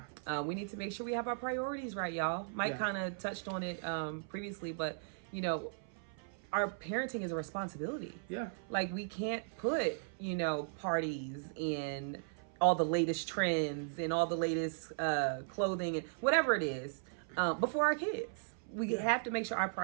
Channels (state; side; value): silent; left; 53 dB below the other